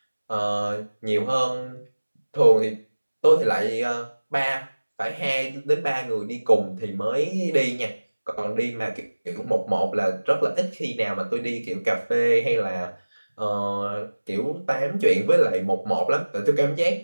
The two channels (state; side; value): inverted; both; correlation -1.00